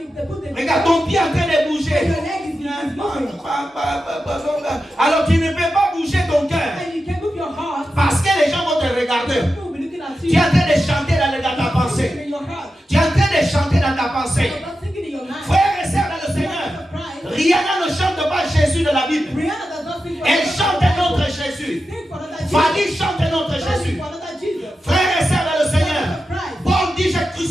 Regarde ton pied en train de bouger. Alors tu ne peux pas bouger ton cœur. Parce que les gens vont te regarder. Tu es en train de chanter dans ta pensée. Tu es en train de chanter dans ta pensée. Frères et sœurs dans le Seigneur, Rihanna ne chante pas Jésus de la Bible. Elle chante un autre Jésus. Fanny chante un autre Jésus. Frères et sœurs dans le Seigneur, Paul dit j'ai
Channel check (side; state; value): both; normal; correlation 0.91